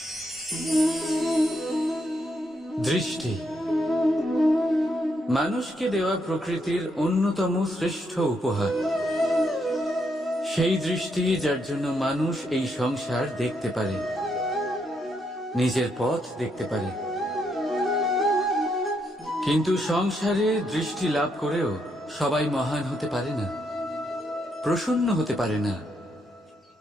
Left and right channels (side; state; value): both; normal; correlation 0.77